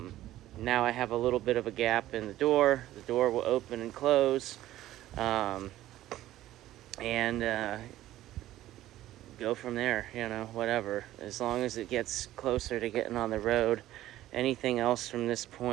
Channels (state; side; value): quieter; left; 14.4 dB